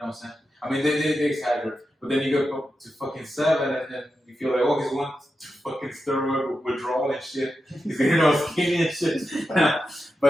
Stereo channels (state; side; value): normal; both; correlation 0.89